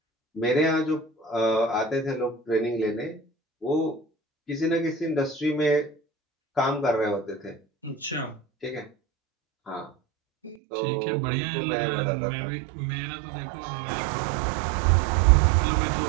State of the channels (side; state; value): left; drops out; at 10.6 s